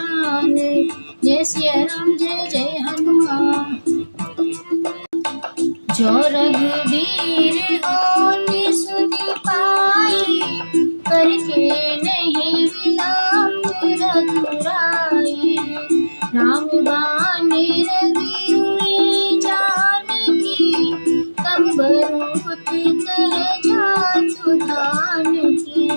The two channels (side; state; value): both; inverted; correlation -1.00